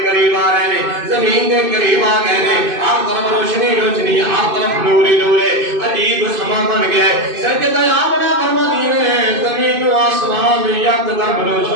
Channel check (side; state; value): left; late; 2.5 ms